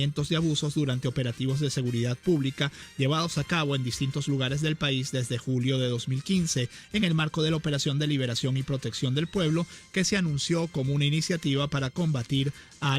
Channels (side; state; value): both; identical; correlation 1.00